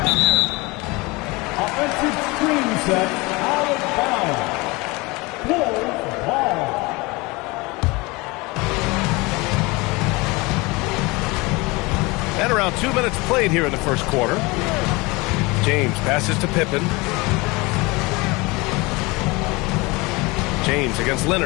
Offensive screen set, out of bounds. Bulls ball. And around 2 minutes played here in the first quarter. James passes to Pippen. James against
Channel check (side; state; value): right; quieter; 24.6 dB